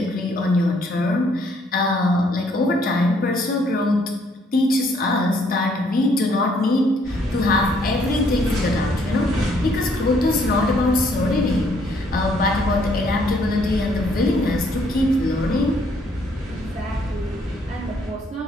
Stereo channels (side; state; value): both; normal; correlation 0.67